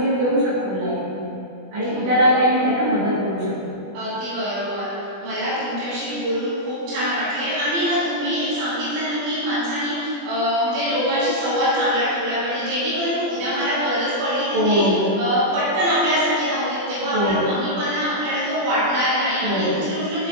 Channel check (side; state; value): left; late; 20 ms